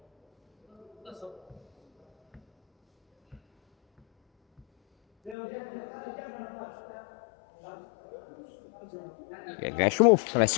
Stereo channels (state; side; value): drops out; right; at 5.4 s